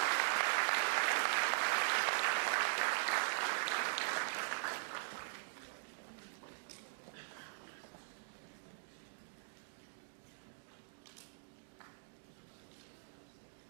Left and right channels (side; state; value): left; silent; digital silence